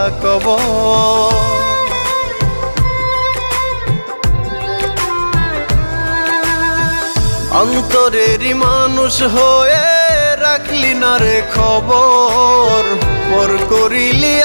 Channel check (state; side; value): inverted; both; correlation -1.00